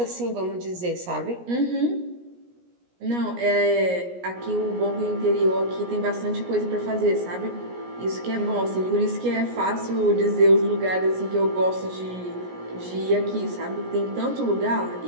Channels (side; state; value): left; late; 17 ms